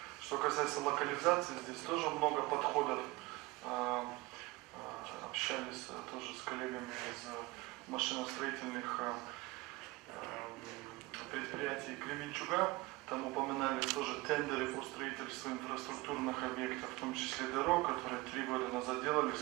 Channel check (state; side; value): quieter; left; 22.1 dB